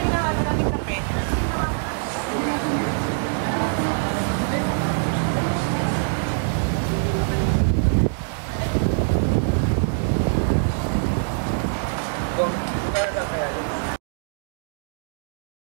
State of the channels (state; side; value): silent; left; digital silence